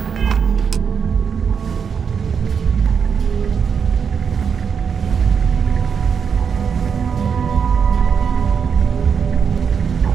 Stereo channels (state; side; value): quieter; left; 6.6 dB